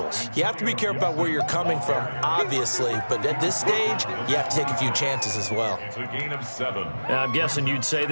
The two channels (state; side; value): inverted; both; correlation -1.00